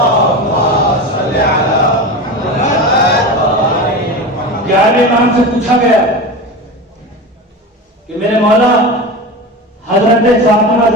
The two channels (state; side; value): normal; both; correlation 0.26